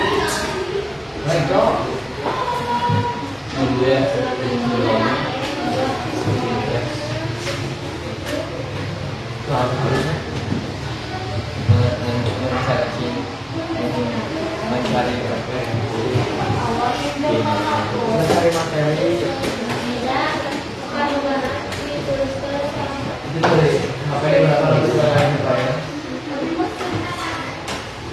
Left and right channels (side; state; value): both; identical; correlation 1.00